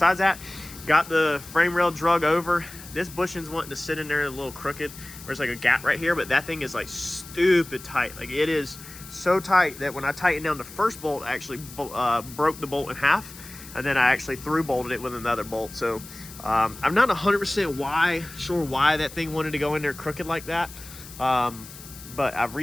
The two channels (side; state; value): left; noise; hiss, 16 dB below the sound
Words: that, got the frame rail drug over. This bushing's wanting to sit in there a little crooked. There's like a gap right here, but that thing is like stupid tight. Like, it is so tight that when I tightened down the first bolt, I actually broke the bolt in half, and then I actually through bolted it with another bolt. So I'm not 100% sure why that thing wanted to go in there crooked like that, but I've